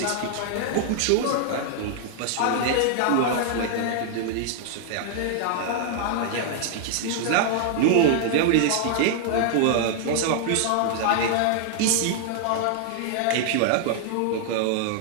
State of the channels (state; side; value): different; both; correlation 0.00